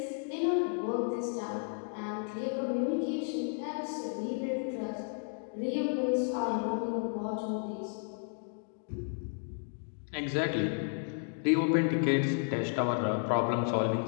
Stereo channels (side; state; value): right; silent; 56 dB below the other